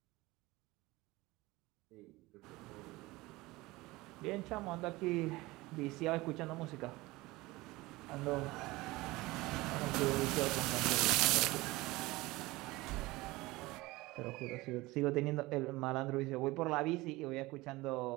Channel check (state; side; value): quieter; left; 20.6 dB